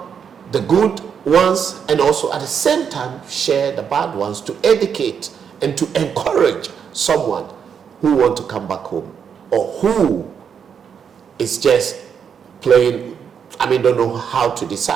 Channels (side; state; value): left; quieter; 7.3 dB